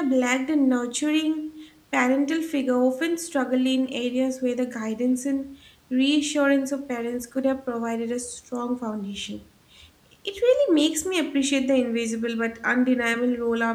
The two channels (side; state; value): both; identical; correlation 1.00